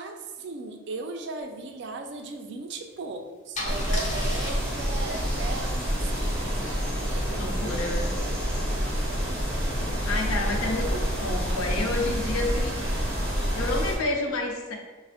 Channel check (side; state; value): both; normal; correlation 0.60